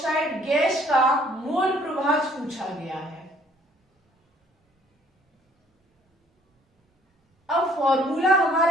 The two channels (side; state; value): both; normal; correlation 0.60